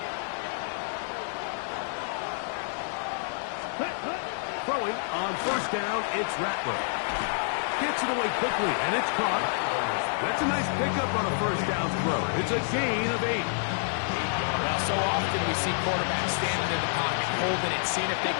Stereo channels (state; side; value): silent; right; digital silence